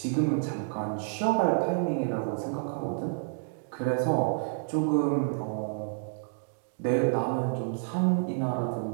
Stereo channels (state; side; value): silent; left; digital silence